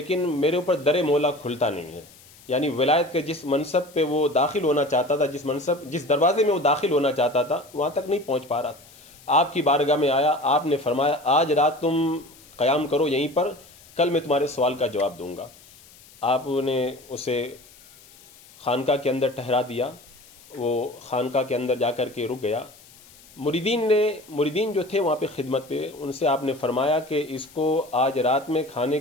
میرے اوپر در مولا کھلتا نہیں ہے۔ یعنی ولایت کے جس منصب پہ وہ داخل ہونا چاہتا تھا، جس دروازے میں وہ داخل ہونا چاہتا تھا، وہاں تک نہیں پہنچ پا رہا تھا۔ آپ کی بارگاہ میں آیا، آپ نے فرمایا آج رات تم قیام کرو یہیں پر، کل میں تمہارے سوال کا جواب دوں گا۔ آپ نے اسے خانقاہ کے اندر ٹھہرا دیا، وہ خانقاہ کے اندر جا کر کے رک گیا۔ مریدین جو تھے وہاں پہ خدمت پہ، ان سے آپ نے فرمایا کہ اس کو آج رات میں کھانے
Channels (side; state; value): left; noise; hiss, 24 dB below the sound